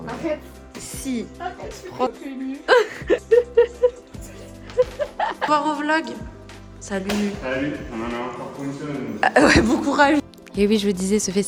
Là. Arrête. Si. Arrête, je suis Prends. Au revoir au vlog. Salut. Salut, on en a encore pour une semaine. Ouais, bon courage. Et oui, je vous disais, ce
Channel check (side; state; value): both; identical; correlation 1.00